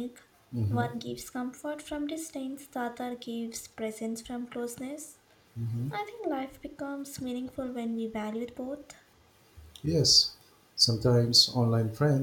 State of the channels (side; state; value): both; identical; correlation 1.00